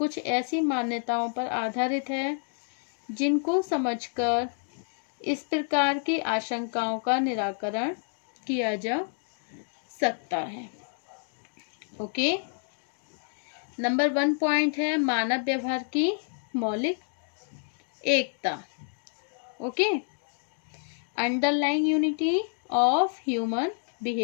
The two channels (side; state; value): right; silent; 57 dB below the other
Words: ऐसी मान्यताओं पर आधारित है जिनको समझकर इस प्रकार की आशंकाओं का निराकरण किया जा सकता है। ओके, नंबर 1 पॉइंट है मानव व्यवहार की मौलिक एकता। Okay, underlying unity of human